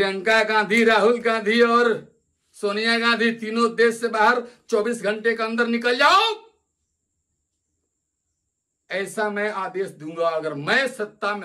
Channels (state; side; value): identical; both; correlation 1.00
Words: गांधी, राहुल गांधी और सोनिया गांधी तीनों देश से बाहर 24 घंटे के अंदर निकल जाओ, ऐसा मैं आदेश दूंगा अगर मैं सत्ता